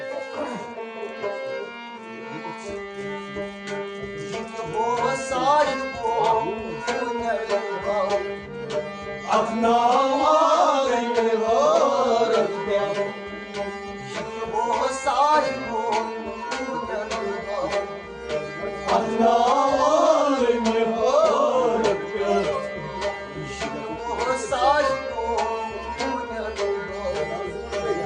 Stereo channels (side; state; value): both; identical; correlation 1.00